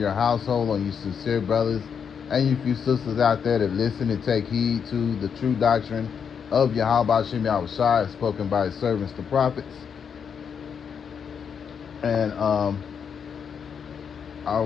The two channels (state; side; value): quieter; right; 7.0 dB